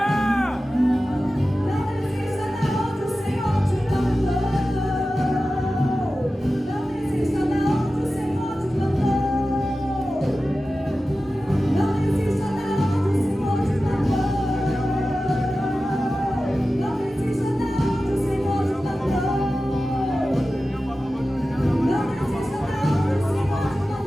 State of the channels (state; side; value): normal; both; correlation 0.94